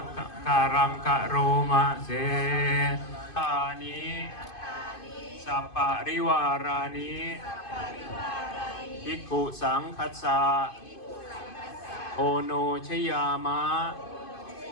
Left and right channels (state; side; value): late; right; 2.5 ms